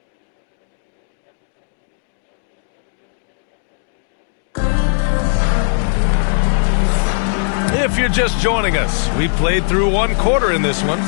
If you're just joining us, we played through 1 quarter in this one.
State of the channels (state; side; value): silent; right; digital silence